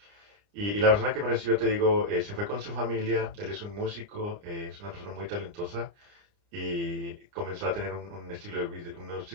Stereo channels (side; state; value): left; late; 29 ms